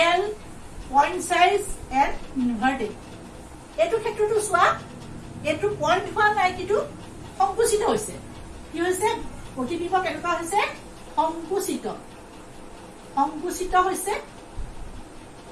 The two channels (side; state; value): both; identical; correlation 1.00